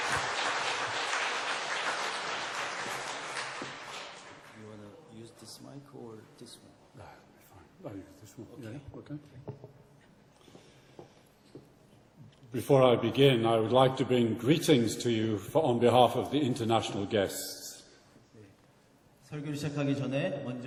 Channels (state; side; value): identical; both; correlation 1.00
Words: You want to use this mic or this one? No, fine. I use this one. Okay. Yeah, okay. Before I begin, I would like to bring greetings to you on behalf of the international guests. 설교를 시작하기 전에